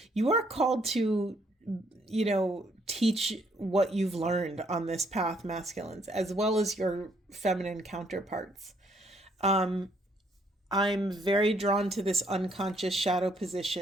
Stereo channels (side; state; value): both; normal; correlation 0.68